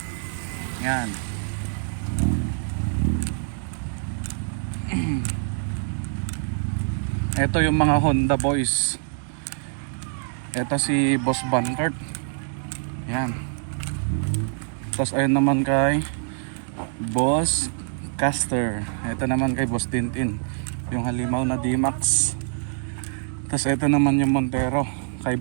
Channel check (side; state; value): left; silent; digital silence